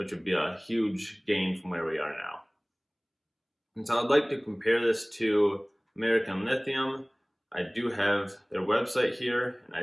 would be a huge gain from where we are now. And so I'd like to compare this to American Lithium. I do have their website here, and I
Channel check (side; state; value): both; identical; correlation 1.00